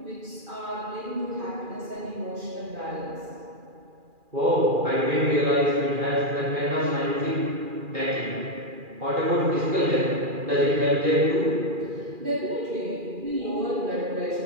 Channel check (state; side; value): late; left; 2.4 ms